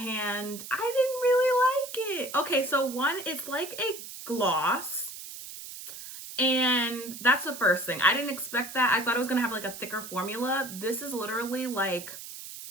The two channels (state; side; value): noise; right; hiss, 12 dB below the sound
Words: I didn't really like it. Okay, so one, it's like a gloss. And that's the first thing. I didn't expect that. I thought it was going to have like a thicker formula. This is literally like